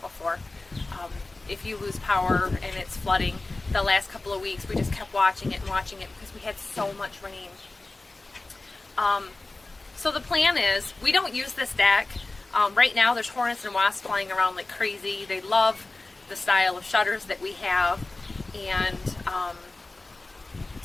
before. If you lose power and it's flooding, the last couple of weeks we just kept watching it because we had so much rain. So the plan is, we don't use this deck. Right now there's hornets and wasps flying around like crazy. They love the style of shutters that we have, and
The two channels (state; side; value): quieter; right; 3.1 dB